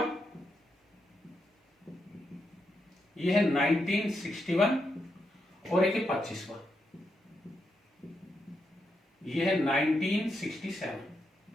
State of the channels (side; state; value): both; normal; correlation 0.83